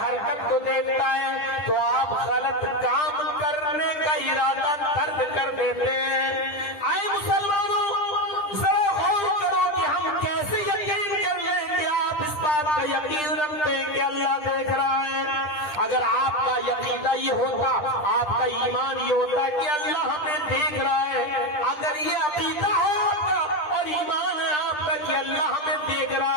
کو دیکھتا ہے تو آپ غلط کام کرنے کا ارادہ ترک کر دیتے ہیں. آئے مسلمانوں، ذرا غور کرو کہ ہم کیسے یقین کر لیں کہ آپ اس بات کا یقین رکھتے ہیں کہ اللہ دیکھ رہا ہے. اگر آپ کا یقینہ یہ ہوتا، آپ کا ایمان یہ ہوتا کہ اللہ ہمیں دیکھ رہا ہے، اگر یہ عقیدہ ہوتا اور ایمان ہے آپ کا کہ اللہ ہمیں دیکھ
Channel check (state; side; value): late; right; 10 ms